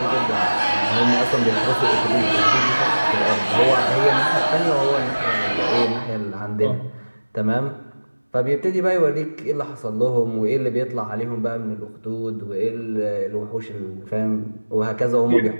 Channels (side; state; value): both; inverted; correlation -1.00